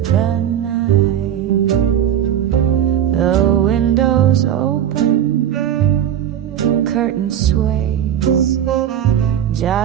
the night. The windows open, curtain sways,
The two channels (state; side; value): quieter; left; 10.2 dB